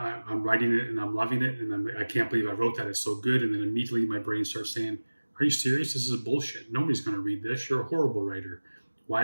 writing it and I'm loving it, and I can't believe I wrote that. It's so good. And then immediately my brain starts saying, are you serious? This is bullshit. Nobody's going to read this. You're a horrible writer.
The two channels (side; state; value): both; inverted; correlation -1.00